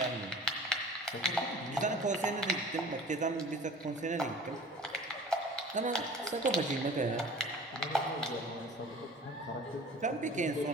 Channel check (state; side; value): normal; both; correlation 0.43